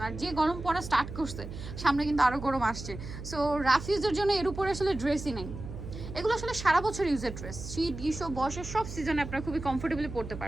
আর যে গরম পড়া স্টার্ট করছে, সামনে কিন্তু আরো গরম আসছে, সো রাফ ইউজের জন্য এর উপরে আসলে ড্রেসই নেই। এগুলো আসলে সারা বছর ইউজের ড্রেস, শীত গ্রীষ্ম বর্ষার সব সিজনে আপনারা খুবই কমফোর্টেবলি পড়তে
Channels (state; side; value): noise; right; hum, 9 dB below the sound